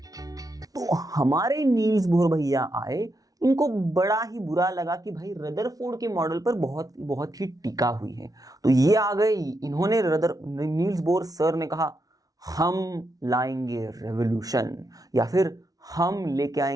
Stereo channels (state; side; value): late; left; 0.18 ms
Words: तो हमारे नील्स बोर भैया आए, इनको बड़ा ही बुरा लगा कि भाई रदरफोर्ड के मॉडल पर बहुत ही टिका हुई है। तो ये आ गए, इन्होंने नील्स बोर सर ने कहा हम लाएंगे रेवोल्यूशन, या फिर हम लेके